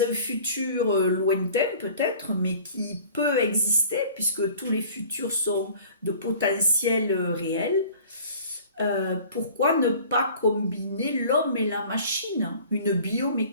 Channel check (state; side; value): inverted; both; correlation -0.47